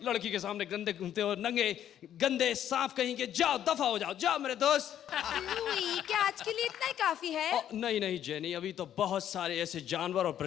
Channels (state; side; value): quieter; right; 10.6 dB